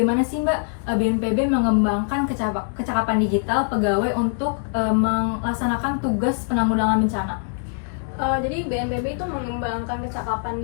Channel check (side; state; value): right; silent; 64 dB below the other